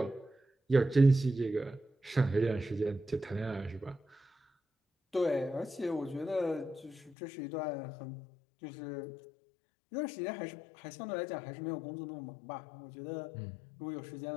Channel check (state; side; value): drops out; right; at 7.2 s